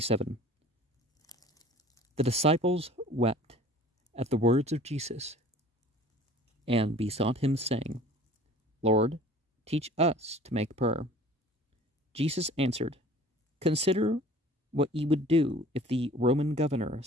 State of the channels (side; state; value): both; normal; correlation 0.48